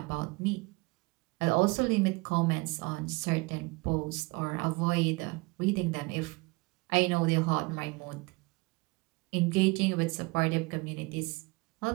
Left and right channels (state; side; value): quieter; left; 26.1 dB